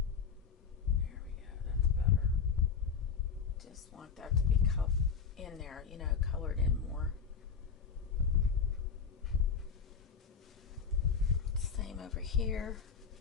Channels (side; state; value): right; quieter; 6.2 dB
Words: Want that to be in there, you know, colored in more. Same over here.